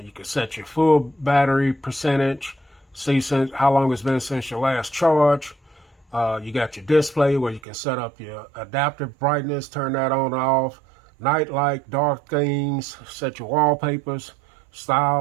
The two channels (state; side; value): drops out; left; at 7.6 s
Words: you can set your full battery percentage. See how long it's been since your last charge. You got your display where you can set up your adaptive brightness, turn that on and off. Night light, dark themes, set your wallpapers,